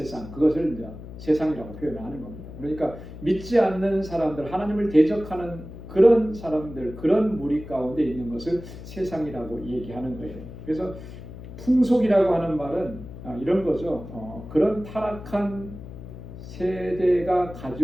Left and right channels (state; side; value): noise; left; hum, 13 dB below the sound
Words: 그것을 이제 세상이라고 표현하는 겁니다. 그러니까 믿지 않는 사람들, 하나님을 대적하는 그런 사람들, 그런 무리 가운데 있는 것을 세상이라고 얘기하는 거예요. 그래서 풍속이라고 하는 말은 이런 거죠. 그런 타락한 세대가